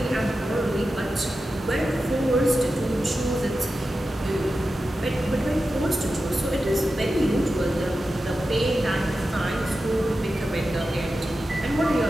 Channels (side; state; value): both; normal; correlation 0.92